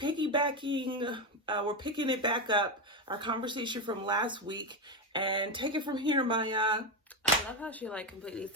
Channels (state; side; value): normal; both; correlation 0.10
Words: we're picking it back up, our conversation from last week, and take it from here, Maya. I love how she completely